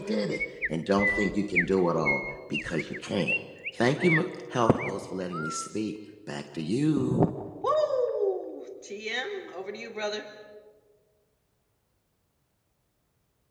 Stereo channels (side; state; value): both; identical; correlation 1.00